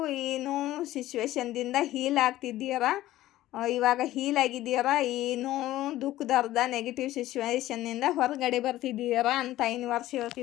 ಏನು ಸಿಚುವೇಶನ್ದಿಂದ ಹೀಲ್ ಆಗ್ತಿದ್ದೀರಾ, ಇವಾಗ ಹೀಲ್ ಆಗಿದ್ದೀರಾ. ಏನು ದುಃಖದ ನೆಗೆಟಿವ್ ಸಿಚುವೇಶನ್ನಿಂದ ಹೊರಗಡೆ ಬರ್ತಿದ್ದೀರಾ ಅಂತ ಯೂನಿವರ್ಸ್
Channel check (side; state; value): right; quieter; 15.2 dB